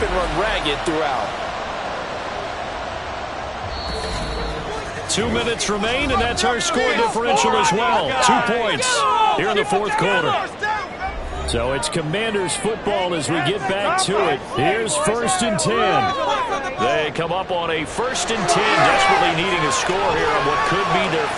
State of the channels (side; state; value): both; identical; correlation 1.00